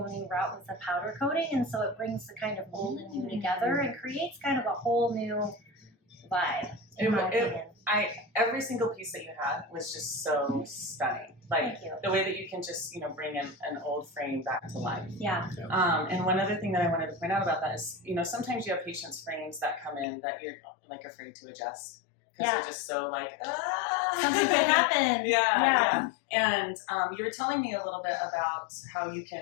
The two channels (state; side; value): drops out; right; at 20.1 s